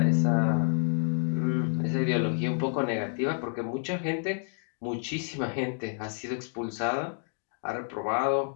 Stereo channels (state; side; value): silent; right; 58 dB below the other